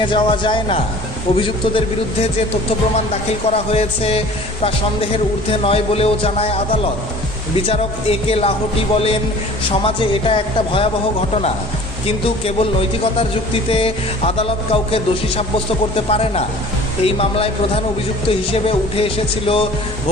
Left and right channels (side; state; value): both; normal; correlation 0.46